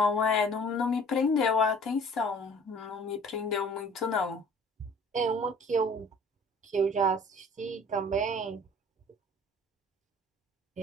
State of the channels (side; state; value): both; normal; correlation 0.50